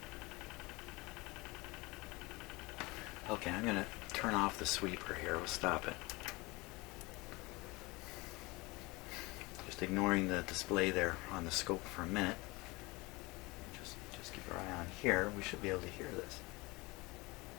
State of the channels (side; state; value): right; quieter; 23.7 dB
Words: Okay, I'm going to turn off the sweeper here. We'll stop it. Just ignoring the display there on the scope for a minute. Just keep our eye on here. We should be able to hear this.